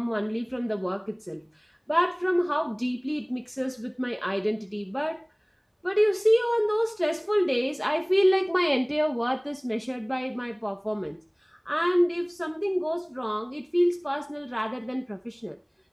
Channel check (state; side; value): identical; both; correlation 1.00